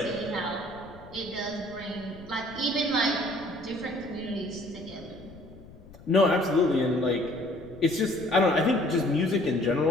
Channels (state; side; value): noise; left; rumble, 20 dB below the sound